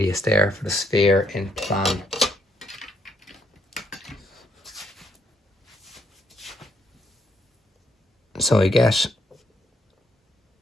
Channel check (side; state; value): both; normal; correlation 0.73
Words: there for the sphere in plan. So I get